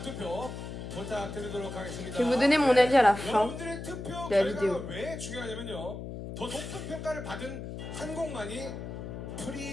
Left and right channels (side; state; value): left; noise; hum, 8 dB below the sound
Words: 투표 부탁드리도록 하겠습니다. Je vais vous donner mon avis à la fin 여러분들의 투표 de la vidéo. 결과가 왜 중요하냐면요. 더 높은 평가를 받은 한 곡만이